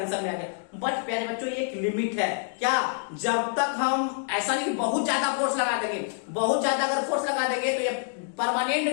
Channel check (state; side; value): silent; right; digital silence